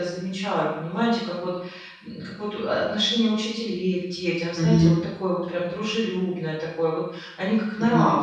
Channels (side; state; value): both; identical; correlation 1.00